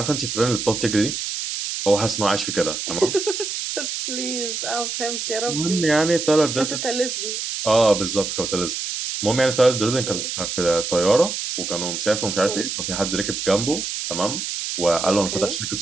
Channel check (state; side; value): noise; right; hiss, 4 dB below the sound